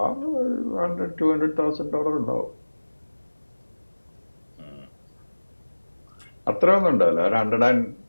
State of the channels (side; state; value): both; inverted; correlation -1.00